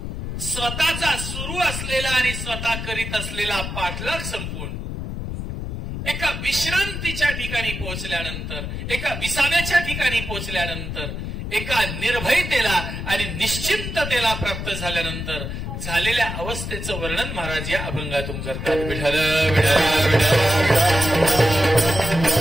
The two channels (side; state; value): left; noise; rumble, 6 dB below the sound